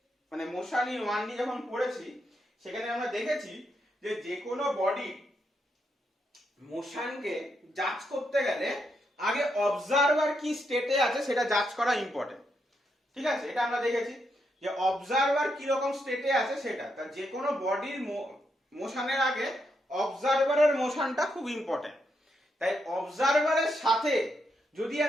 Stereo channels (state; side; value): normal; both; correlation 0.81